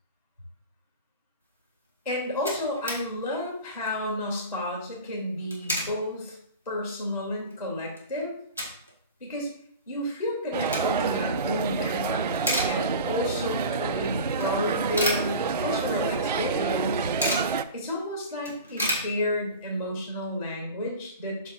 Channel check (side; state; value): both; inverted; correlation -0.34